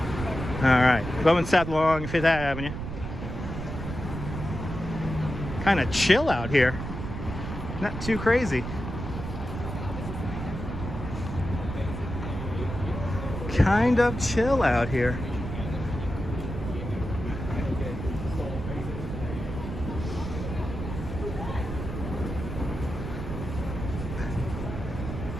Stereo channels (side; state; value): right; noise; rumble, 6 dB below the sound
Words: All right, going south along 5th Avenue. Kind of chill out here. Not too crazy. Kind of chill out here.